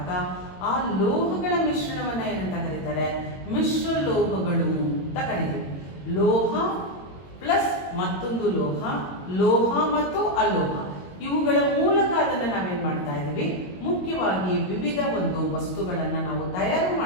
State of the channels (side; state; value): right; late; 22 ms